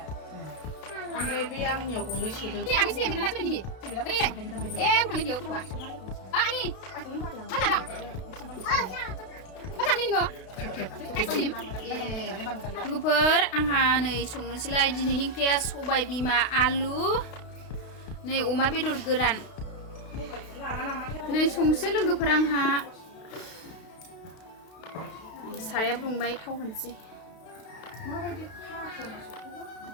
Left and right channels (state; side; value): late; right; 32 ms